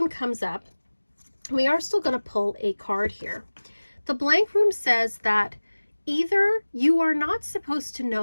comes up, we are still going to pull a card here. The blank rune says that either you are not supposed to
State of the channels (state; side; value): inverted; both; correlation -1.00